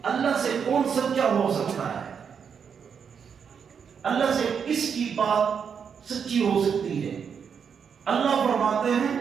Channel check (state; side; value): quieter; left; 6.9 dB